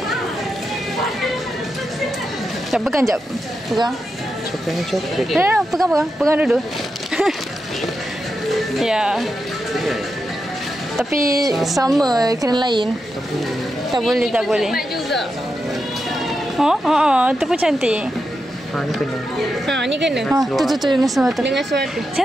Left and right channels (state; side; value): normal; both; correlation 0.87